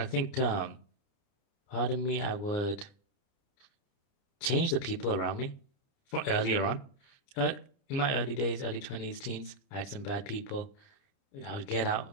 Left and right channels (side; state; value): right; late; 30 ms